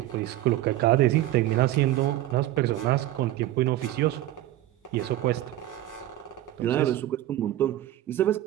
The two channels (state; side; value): quieter; left; 14.6 dB